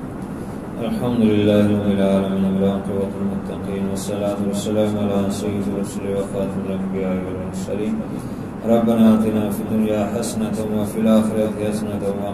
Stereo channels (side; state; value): both; identical; correlation 1.00